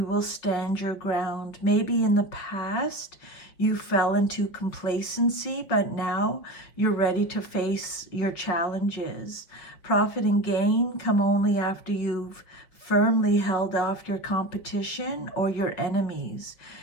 will stand your ground. Maybe in the past you fell into complacency, but now you're ready to face your challenges. Profit and gain come only after you've firmly held off your competition or your enemies.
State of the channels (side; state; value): right; late; 5.7 ms